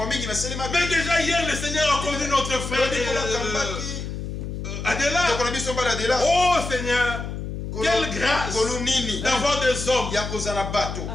Mais déjà hier, le Seigneur a conduit notre frère Adela. Oh Seigneur, quelle grâce d'avoir des hommes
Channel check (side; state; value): left; noise; hum, 6 dB below the sound